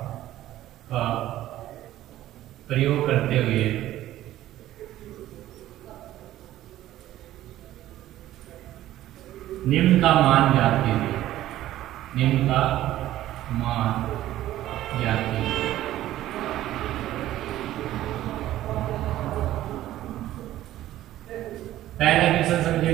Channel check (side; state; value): left; quieter; 14.0 dB